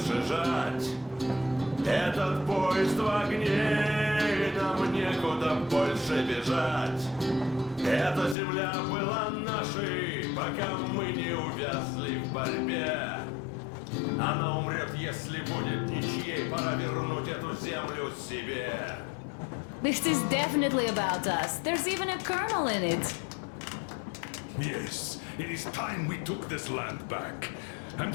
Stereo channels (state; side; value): drops out; right; at 8.3 s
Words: жать. Этот поезд в огне, и нам некуда больше бежать. Эта земля была нашей, пока мы не увязли в борьбе. Она умрет, если будет ничьей, пора вернуть эту землю себе. This is definitely about us. There's even a colonel in it. Yes, it is time we took this land back. And